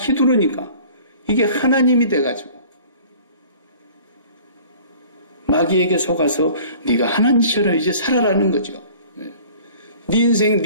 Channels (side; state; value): both; inverted; correlation -0.48